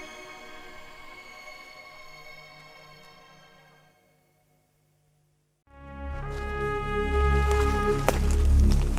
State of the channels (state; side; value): identical; both; correlation 1.00